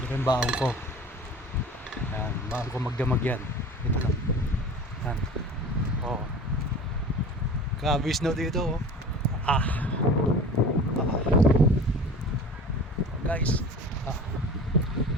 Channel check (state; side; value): normal; both; correlation 0.39